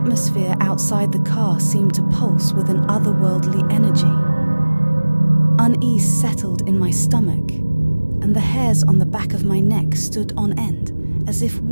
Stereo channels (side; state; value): both; inverted; correlation -1.00